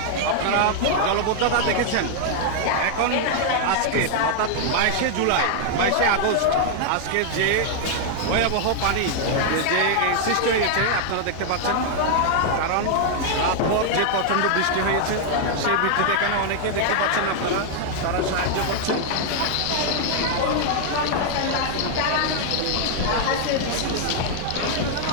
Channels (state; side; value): different; both; correlation 0.00